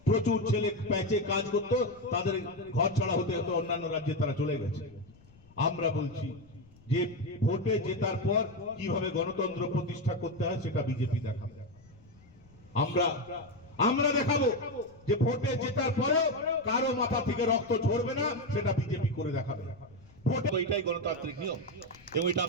প্রচুর ছেলে প্যাচে কাজ করতো, তাদের ঘর ছাড়া হতে হতো, অন্যান্য রাজ্যে তারা চলে গেছে। আমরা বলছি যে ভোটে জেতার পর কিভাবে গণতন্ত্র প্রতিষ্ঠা করতে হয় সেটা বিজেপি দেখাবে। আমরা দেখাবো যে ভোটে জেতার পরেও কারো মাথা থেকে রক্ত ঝরবে না, সেটা বিজেপি করে দেখাবে। ভোটে এটাই গণতান্ত্রিক নিয়ম এবং এটা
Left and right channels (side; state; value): left; noise; rumble, 26 dB below the sound